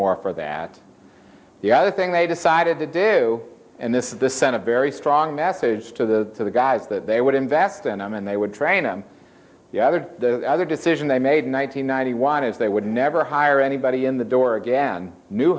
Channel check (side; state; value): both; identical; correlation 1.00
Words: for that. The other thing they decided to do, and this sent a very strong message to the guys that they would invest in them and they would train them. The other decision they made in 1991 is they would never hire anybody in the door again, new